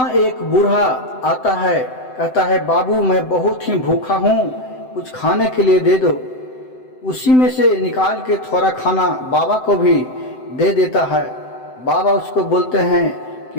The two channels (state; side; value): late; right; 7.8 ms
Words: एक बूढ़ा आता है, कहता है बाबू मैं बहुत ही भूखा हूँ, कुछ खाने के लिए दे दो। उसी में से निकाल के थोड़ा खाना बाबा को भी दे देता है। बाबा उसको बोलते हैं